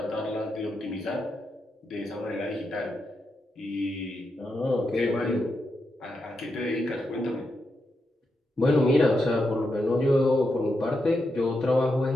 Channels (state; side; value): normal; both; correlation 0.85